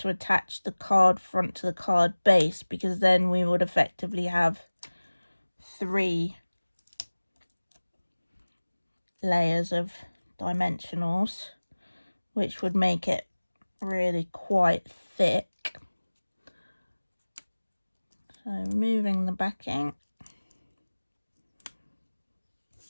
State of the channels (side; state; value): both; inverted; correlation -1.00